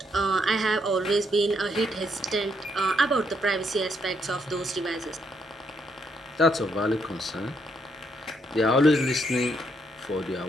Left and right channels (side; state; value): both; normal; correlation 0.74